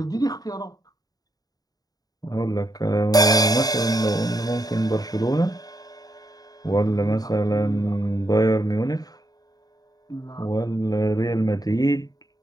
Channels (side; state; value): right; late; 0.18 ms